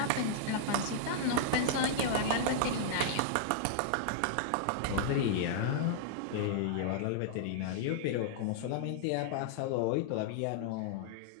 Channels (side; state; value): both; different; correlation -0.01